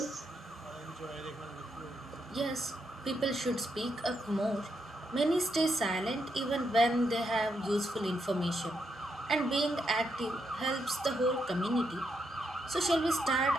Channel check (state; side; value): normal; both; correlation 0.81